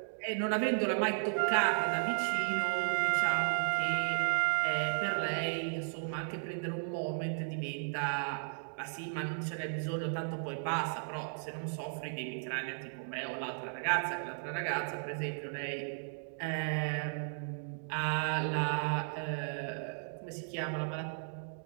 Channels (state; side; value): silent; left; digital silence